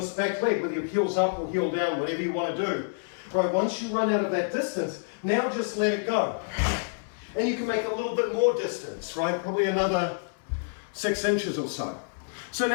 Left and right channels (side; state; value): right; silent; 59 dB below the other